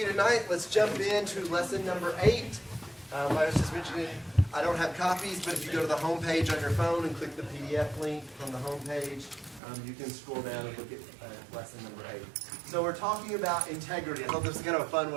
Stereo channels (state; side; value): drops out; left; at 9.6 s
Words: you tonight. Let's jump into lesson number 8. I was just mentioning, I don't have copies, but if you go to the home page on your phone and click the PDF link from the home page, you can scroll down and look at lesson number 8. So we're talking about integrity. I thought this was kind of a fun